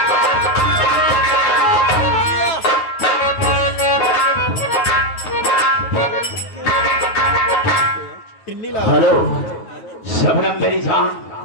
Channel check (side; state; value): right; late; 9.3 ms